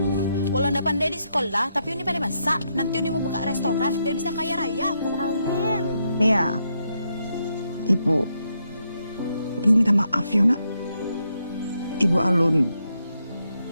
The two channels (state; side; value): inverted; both; correlation -0.80